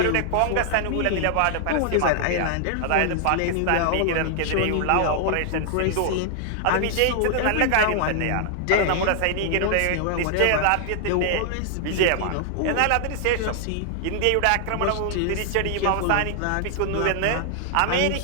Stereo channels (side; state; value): both; different; correlation 0.00